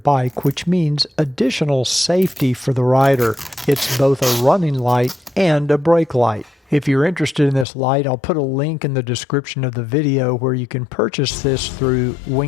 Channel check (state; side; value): drops out; right; at 7.7 s